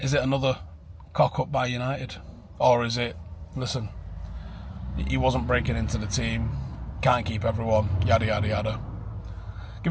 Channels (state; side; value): identical; both; correlation 1.00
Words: it another cock-up by United? Or is it, listen, he wasn't breaking into the team, can't keep everyone, yada, yada, yada.